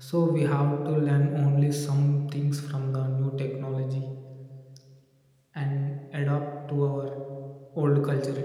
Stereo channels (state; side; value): identical; both; correlation 1.00